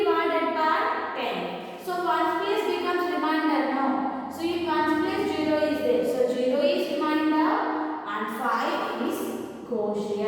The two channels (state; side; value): identical; both; correlation 1.00